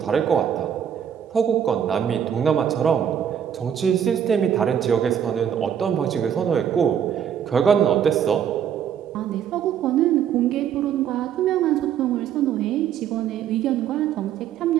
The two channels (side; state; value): left; quieter; 8.9 dB